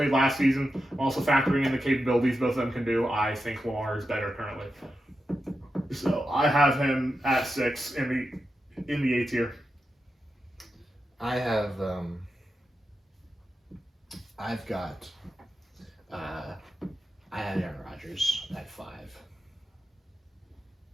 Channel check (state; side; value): normal; both; correlation 0.89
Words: last season. I'm also factoring in the capabilities both of them can do. I think Lamar is better currently. So I have him at 6 in the A tier. I have I've got I had Aaron Rodgers at 5